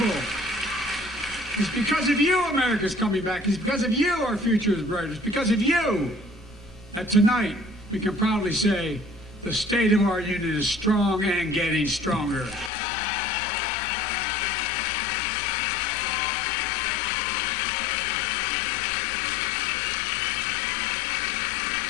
It's because of you America's coming back. It's because of you our future is bright. It's because of you that tonight we can proudly say the state of our union is strong and getting stronger.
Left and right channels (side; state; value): right; drops out; at 12.7 s